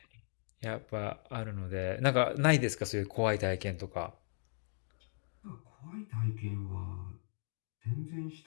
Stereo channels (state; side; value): silent; right; digital silence